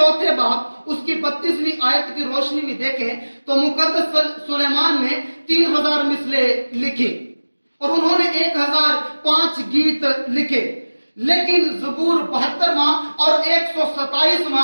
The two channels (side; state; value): both; inverted; correlation -1.00